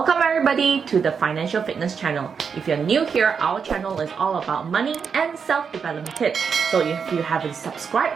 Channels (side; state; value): left; quieter; 6.2 dB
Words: everybody to the Financial Fitness channel. If you're new here, our channel is all about money and self-development tips. So if you haven't subscribed